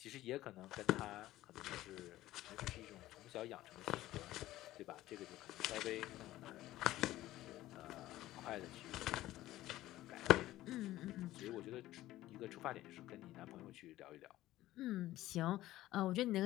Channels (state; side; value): quieter; right; 15.5 dB